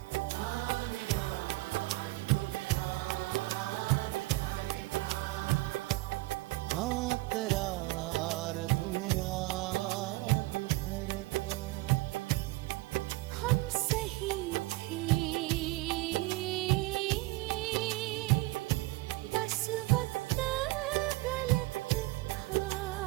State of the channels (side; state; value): left; quieter; 20.5 dB